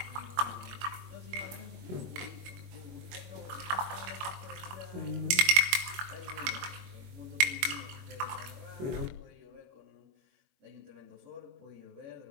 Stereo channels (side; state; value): left; late; 21 ms